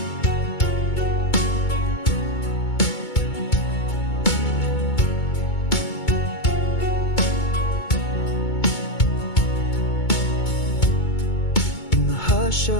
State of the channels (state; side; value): late; right; 2.2 ms